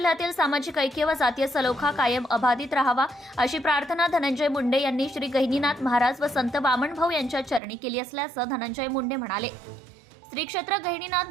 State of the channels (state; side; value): drops out; left; at 7.6 s